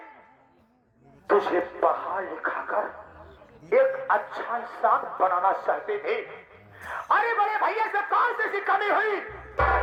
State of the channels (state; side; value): identical; both; correlation 1.00